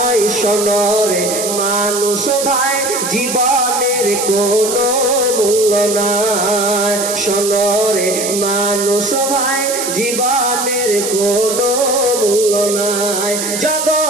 সোনরে মানুষ ভাই জীবনের কোনো মূল্য নাই। সোনরে মানুষ ভাই জীবনের কোনো মূল্য নাই,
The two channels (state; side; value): noise; right; hiss, 3 dB below the sound